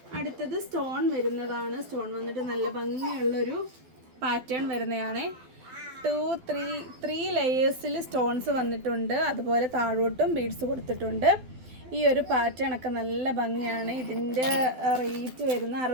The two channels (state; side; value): late; left; 12 ms